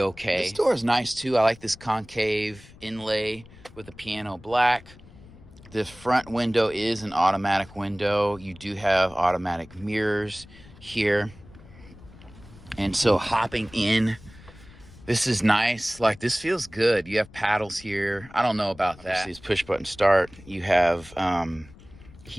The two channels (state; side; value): noise; left; rumble, 21 dB below the sound